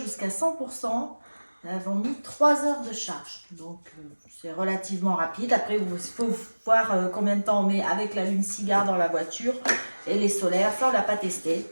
100%, nous avons mis 3 heures de charge. Donc c'est relativement rapide. Après, il faut voir combien de temps on met avec l'allume-cigare dans la voiture et les solaires. Ça, on ne l'a pas testé.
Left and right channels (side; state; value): both; inverted; correlation -1.00